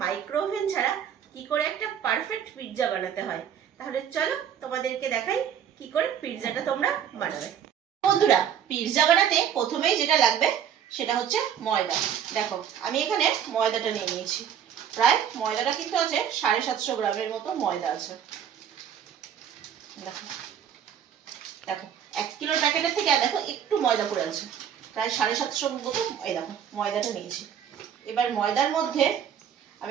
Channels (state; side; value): quieter; left; 8.8 dB